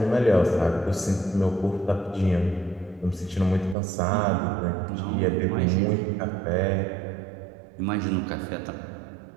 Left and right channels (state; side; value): drops out; left; at 3.8 s